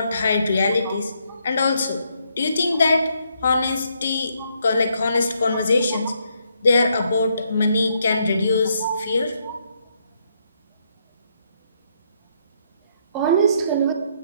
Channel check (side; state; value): both; inverted; correlation -0.75